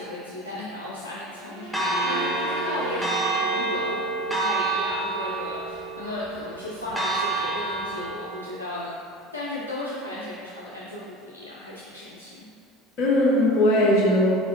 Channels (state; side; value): normal; both; correlation 0.33